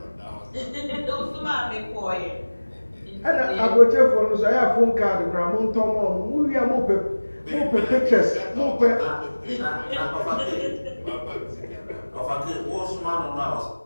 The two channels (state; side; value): inverted; both; correlation -1.00